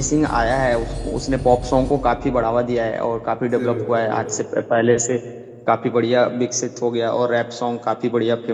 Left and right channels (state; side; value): identical; both; correlation 1.00